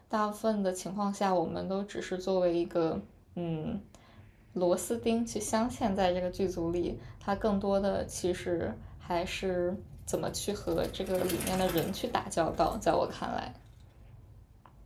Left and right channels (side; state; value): both; identical; correlation 1.00